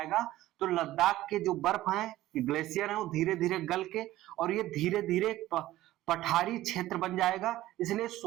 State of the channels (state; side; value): quieter; left; 15.4 dB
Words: तो लद्दाख के जो बर्फ है, ग्लेशियर है, वो धीरे धीरे गल के और ये धीरे धीरे पठारी क्षेत्र बन जाएगा। इसलिए